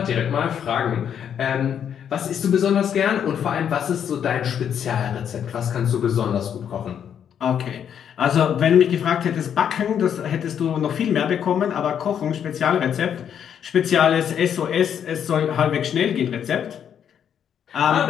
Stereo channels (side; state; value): right; quieter; 8.6 dB